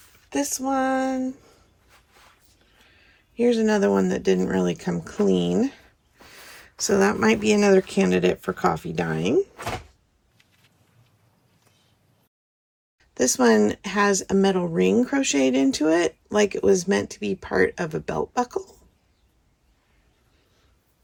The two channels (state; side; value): identical; both; correlation 1.00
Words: This one. Here's another one that didn't really come clean. So that might be another candidate for coffee dyeing. This one has a metal ring crocheted into it, like it was meant to be part of a belt buckle.